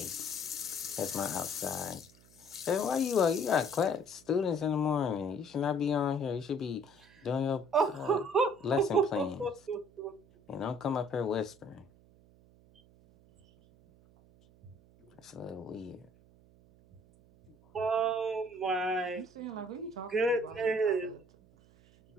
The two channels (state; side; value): noise; right; hum, 27 dB below the sound